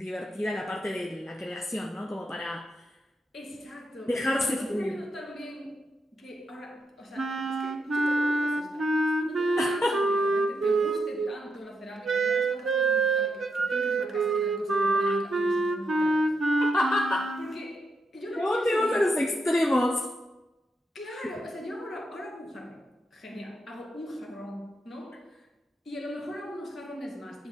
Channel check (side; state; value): both; normal; correlation 0.82